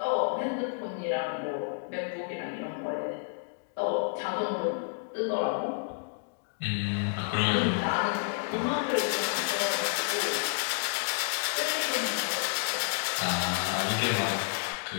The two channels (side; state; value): right; silent; digital silence